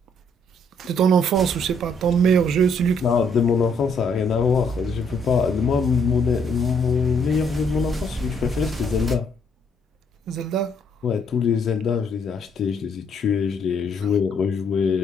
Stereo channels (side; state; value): both; normal; correlation 0.69